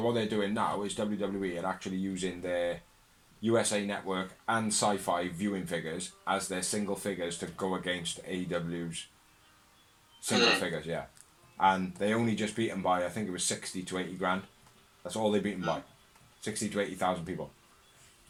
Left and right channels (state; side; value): identical; both; correlation 1.00